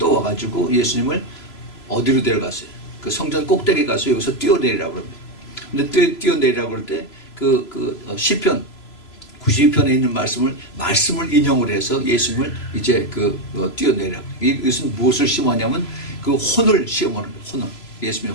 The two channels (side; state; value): right; late; 3.0 ms